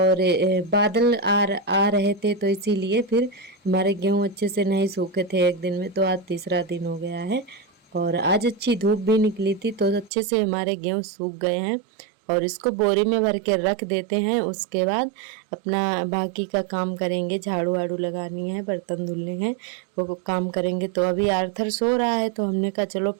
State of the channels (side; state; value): left; drops out; at 10.1 s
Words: बादल आ रहे थे, तो इसीलिए फिर हमारे गेहूँ अच्छे से नहीं सूखे थे एक दिन में। तो आज तीसरा दिन हो गया है और आज अच्छी धूप भी निकली थी, तो अच्छे से हमारे गेहूँ सूख गए हैं। और इसको बोरी में भर के रख देते हैं। उसके बाद अपना बाकी का काम करेंगे। झाड़ू वाड़ू लगानी है, बर्तन धुलने हैं, वो काम करेंगे। तो अभी आर्थर सो रहा है, तो हमने कहा चलो